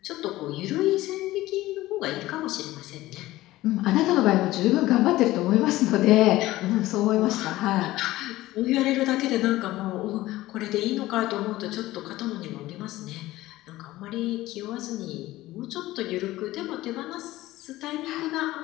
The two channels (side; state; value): right; quieter; 17.0 dB